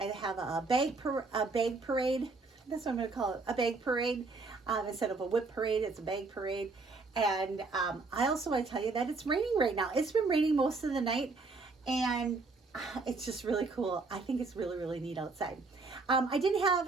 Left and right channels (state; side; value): quieter; left; 3.9 dB